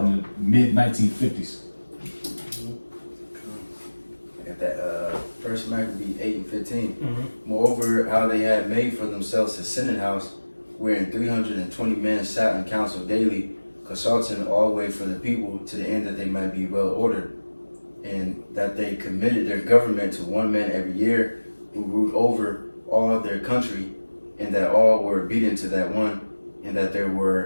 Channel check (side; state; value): both; inverted; correlation -1.00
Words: in the mid 1950s. I got that First Maccabee 8 and 15. Moreover, how they had made for themselves a senate house, wherein 320 men sat in council daily, consulting always for the people, to the end that they might be well ordered, and that they committed their government to one man every year, who ruled over all of their country, and that all were obedient to that one, and that there